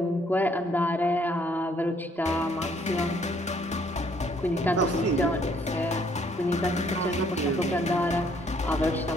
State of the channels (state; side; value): normal; both; correlation 0.65